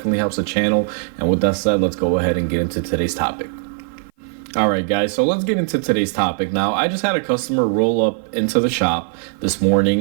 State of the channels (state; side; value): silent; left; 55 dB below the other